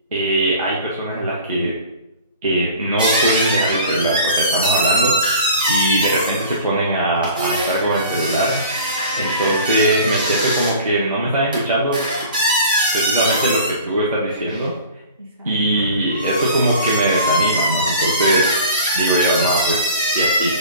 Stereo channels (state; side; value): inverted; both; correlation -0.43